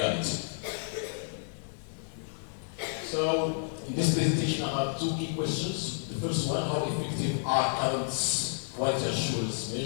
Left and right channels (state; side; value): silent; right; digital silence